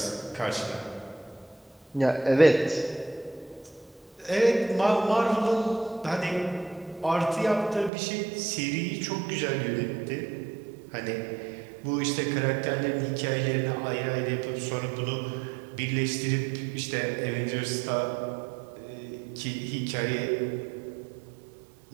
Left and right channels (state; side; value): drops out; left; at 7.9 s